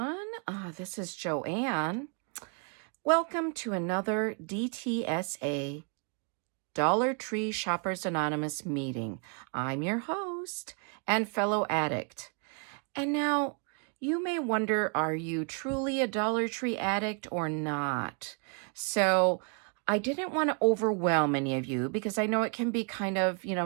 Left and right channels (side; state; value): left; quieter; 39.8 dB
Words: This is Joanne. Welcome to another DTSA Dollar Tree Shoppers Anonymous meeting. I'm your host and fellow addict. And now, you may wonder, are you truly a Dollar Tree addict or not? So, I didn't want to overwhelm any of you because I know it can be kind of,